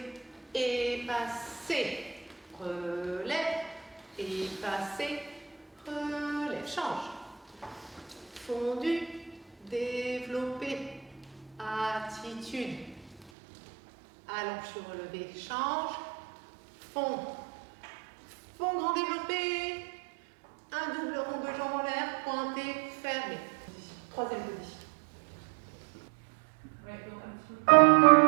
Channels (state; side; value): drops out; left; at 13.3 s